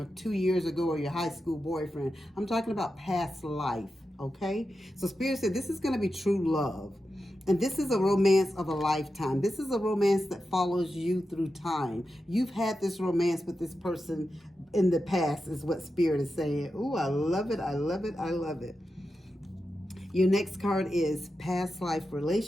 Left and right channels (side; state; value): both; normal; correlation 0.90